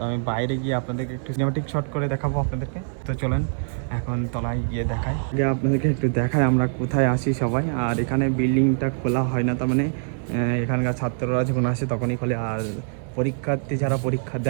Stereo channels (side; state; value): left; silent; digital silence